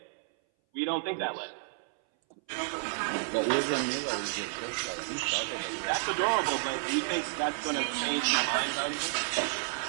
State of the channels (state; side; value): silent; left; 57 dB below the other